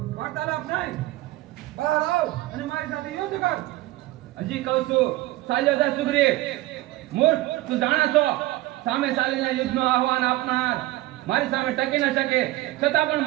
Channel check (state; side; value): quieter; left; 17.4 dB